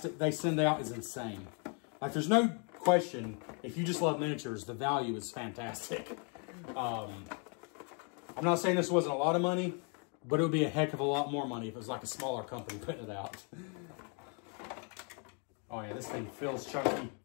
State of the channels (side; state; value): right; quieter; 38.0 dB